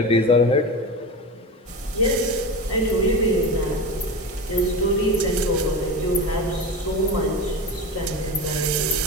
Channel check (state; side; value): normal; both; correlation 0.25